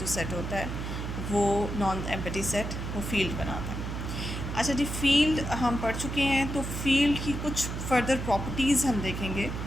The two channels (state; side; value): noise; right; hum, 5 dB below the sound